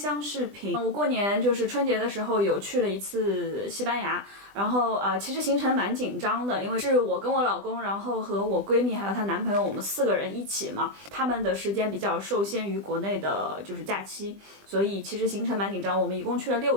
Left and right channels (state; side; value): late; left; 20 ms